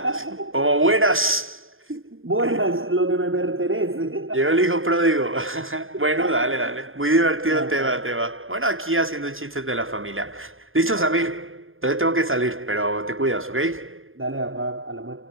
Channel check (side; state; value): left; late; 0.59 ms